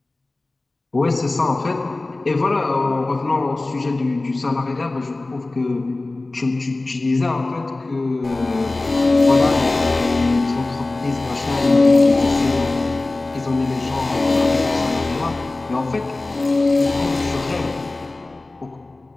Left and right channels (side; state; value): right; quieter; 3.1 dB